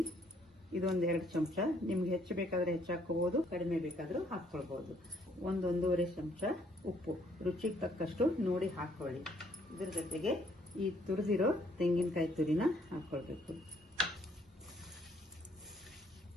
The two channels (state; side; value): normal; both; correlation 0.66